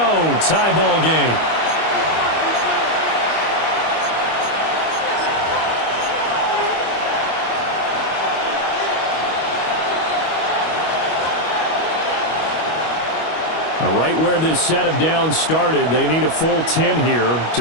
Tie ball game. Right where this set of downs started, they need a full 10 here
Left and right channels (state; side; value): late; right; 25 ms